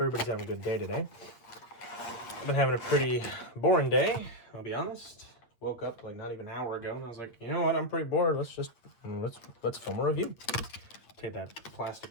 having a good day today. I've been having a pretty boring day, I'll be honest. Woke up like not even an hour ago and I was like, you know what, I'm pretty bored. Let's film a review. Take that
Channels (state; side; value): late; right; 8.4 ms